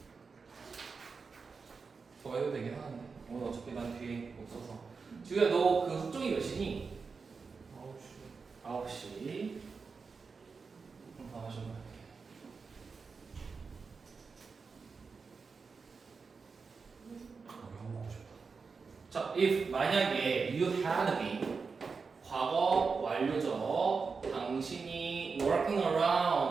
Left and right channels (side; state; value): left; quieter; 4.9 dB